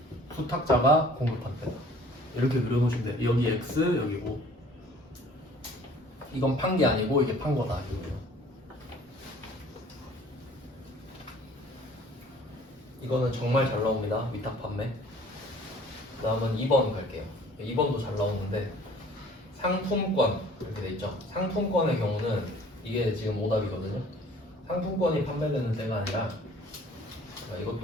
수탁자가 공급한 때다. 이렇게 그려놓으시면 돼요. 여기 X, 여기고. 이건 판 게 아니고 이게 판 거다. 이거예요. 이거는 정말 잘 나옵니다. 위탁 판매. 그 다음은 2번 갈게요. 2번도 잘 나오는데 상품권 이렇게 돼 있죠. 상품권의 경우는 이게 지금 오답이거든요. 상품권이 판매되는 때가 아니라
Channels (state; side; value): normal; both; correlation 0.52